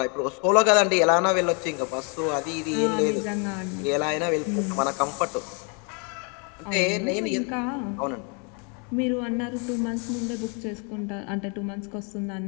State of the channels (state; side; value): quieter; right; 36.3 dB